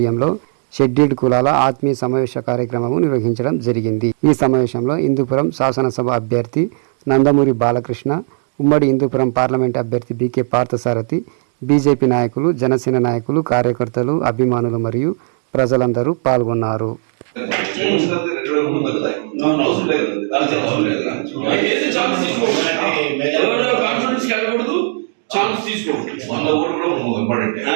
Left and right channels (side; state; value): left; silent; 55 dB below the other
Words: షెడ్యూల్డ్ కులాల ఆత్మీయ సమావేశ కార్యక్రమము నిర్వహించడం జరిగింది. ఈ సమావేశంలో హిందూపురం శాసనసభ అభ్యర్థి నందమూరి బాలకృష్ణ, ఉమ్మడి హిందూపురం పార్లమెంట్ అభ్యర్థి బీకే పార్థసారథి, బీజేపీ నాయకులు, జనసేన నాయకులు, కార్యకర్తలు, అభిమానులు మరియు ప్రజలందరూ పాల్గొన్నారు.